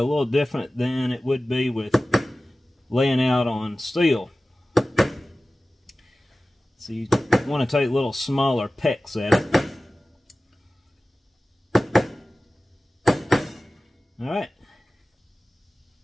little different than it would be with laying out on steel. So you want to take little smaller pecks at it. Alright.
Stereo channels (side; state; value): both; normal; correlation 0.96